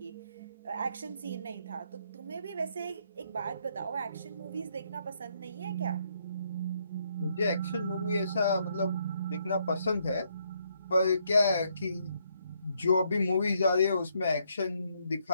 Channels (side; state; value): both; inverted; correlation -0.73